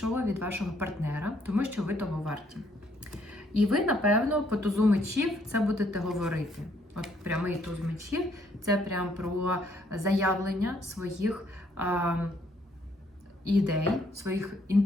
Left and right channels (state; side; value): normal; both; correlation 0.68